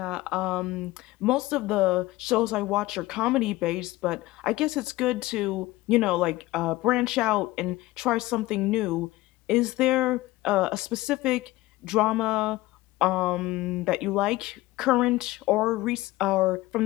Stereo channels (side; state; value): right; quieter; 18.6 dB